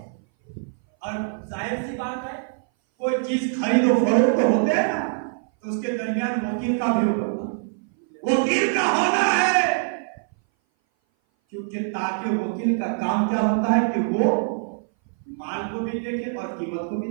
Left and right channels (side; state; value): left; silent; 58 dB below the other